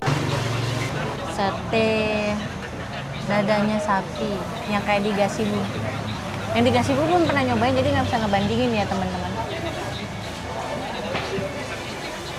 Sate dadanya sapi yang kayak di Gasibu. Yang di Gasibu belum pernah nyobain, jadi nggak bisa ngebandingin ya teman-teman.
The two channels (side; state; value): both; identical; correlation 1.00